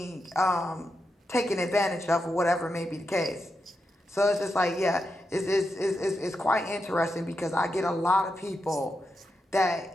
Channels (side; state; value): both; normal; correlation 0.86